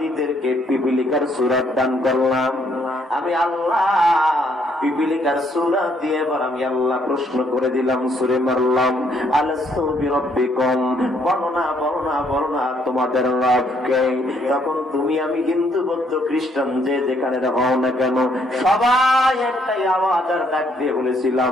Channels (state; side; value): normal; both; correlation 0.69